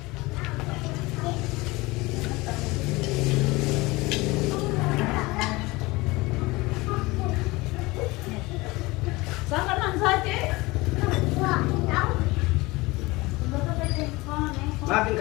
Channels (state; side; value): quieter; right; 22.2 dB